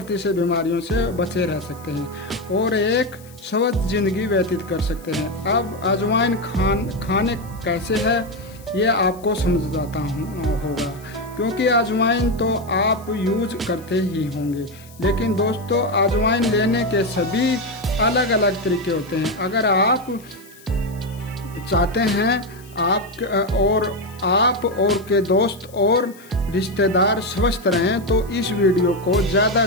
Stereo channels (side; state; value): left; noise; hiss, 24 dB below the sound